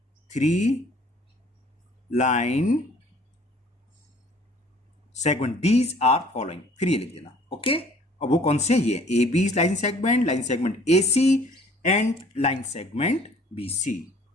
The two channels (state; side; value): normal; both; correlation 0.55